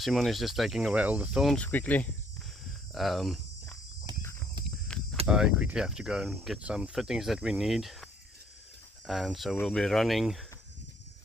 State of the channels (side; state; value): both; normal; correlation 0.65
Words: is just taking away all the thorns quickly. I quickly have to go and get some fittings that we need, and so we'll be running